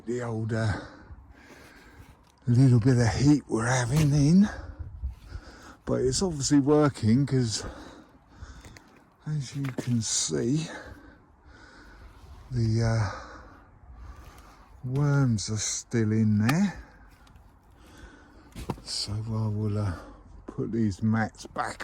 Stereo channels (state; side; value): identical; both; correlation 1.00